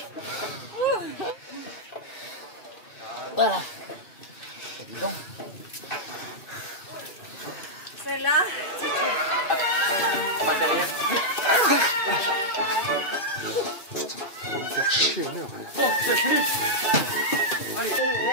Voilà. Évident. C'est là. On va derrière. Putain, on va me faire chier une heure. Bon, c'est fini. Allez.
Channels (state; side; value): late; right; 2.6 ms